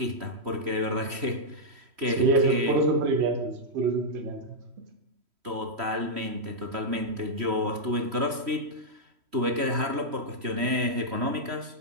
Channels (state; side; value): late; left; 3.1 ms